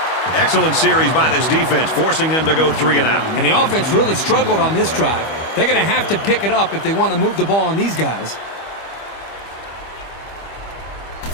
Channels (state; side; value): late; right; 25 ms